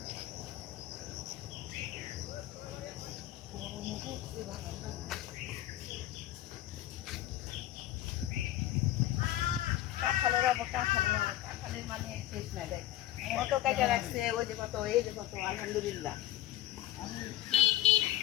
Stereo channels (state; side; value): quieter; right; 14.0 dB